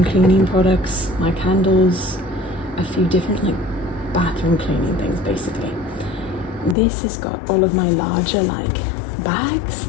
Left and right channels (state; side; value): drops out; right; at 6.8 s